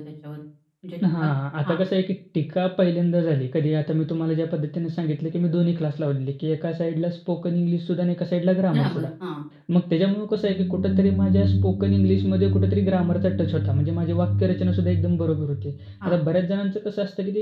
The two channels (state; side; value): identical; both; correlation 1.00